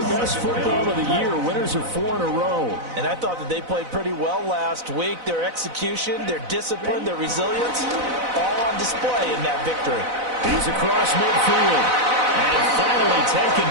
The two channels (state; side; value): late; left; 4.0 ms